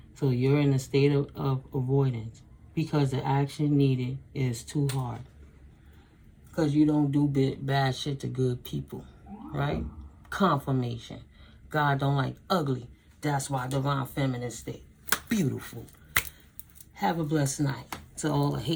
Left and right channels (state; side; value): identical; both; correlation 1.00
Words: So you're in a state of avoidance because the action needed is too hard. Because you don't do bad shit to good people, right? Confirmation. God don't like ugly. That's why divine feminine state. Beautiful. Have a blessed night. To all the